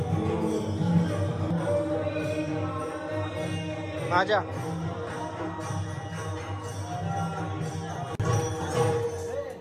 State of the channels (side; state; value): both; identical; correlation 1.00